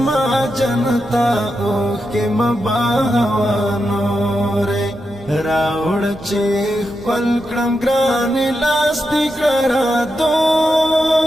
جنتا اوخ کې مباوانورې راوړ چې خپل کړم ګران لاس دې کرا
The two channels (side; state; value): both; normal; correlation 0.87